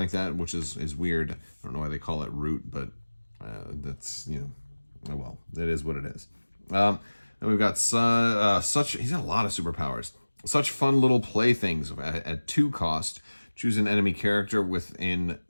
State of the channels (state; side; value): inverted; both; correlation -1.00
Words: that, which is weird. I don't know why they call it Root, but that's, you know, oh well, it is what it is. And we've got he's got a lot of superpowers. Such fun little playthings at 2 cost. Choose an enemy character within